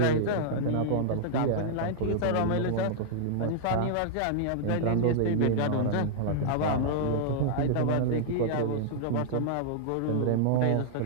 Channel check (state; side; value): different; both; correlation -0.02